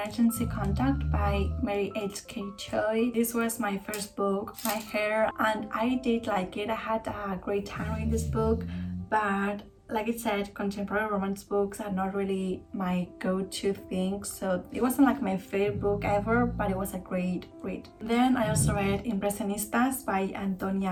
Contact by Mary H.K. Choi. This was my first book, tahereh, and I did like it. I had a great time reading this book, but like I said, contemporary romance books are not really my go-to thing, so it wasn't like my favorite book ever, but it was a great read. Then I also read Impresionistas by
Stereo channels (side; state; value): both; identical; correlation 1.00